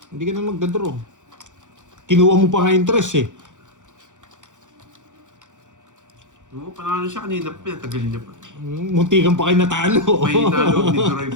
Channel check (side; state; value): left; late; 0.86 ms